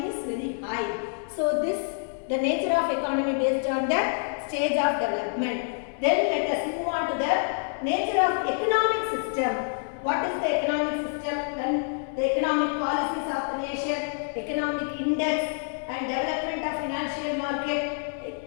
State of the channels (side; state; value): right; silent; 60 dB below the other